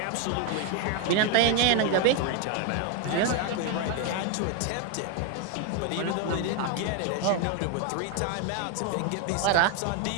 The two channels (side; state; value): both; different; correlation 0.01